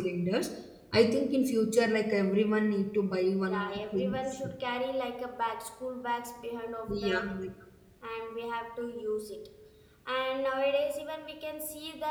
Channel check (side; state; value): both; identical; correlation 1.00